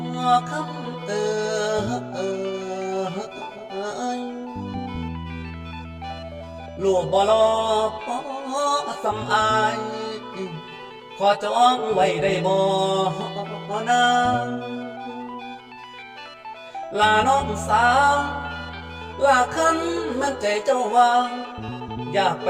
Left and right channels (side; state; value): both; identical; correlation 1.00